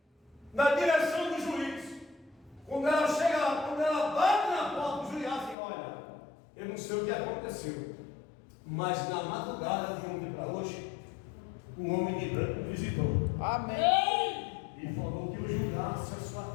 na direção do juiz. Quando ela chega lá, quando ela bate na porta do juiz, assim: olha, eu não sei o que aconteceu, mas na madrugada de ontem para hoje, um homem de branco me visitou. Amém. E falou que eu julgasse a sua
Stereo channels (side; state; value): right; drops out; at 5.6 s